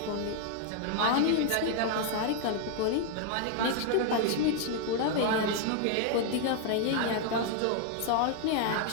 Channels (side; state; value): both; different; correlation 0.00